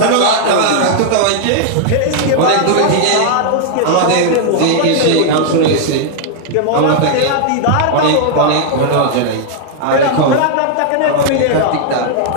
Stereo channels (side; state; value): both; different; correlation 0.00